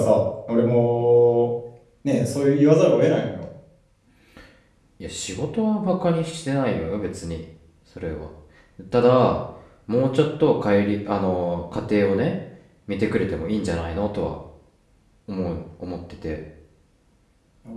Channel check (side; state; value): both; identical; correlation 1.00